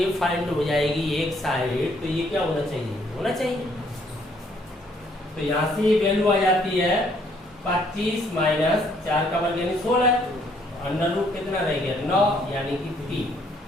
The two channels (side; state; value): both; normal; correlation 0.66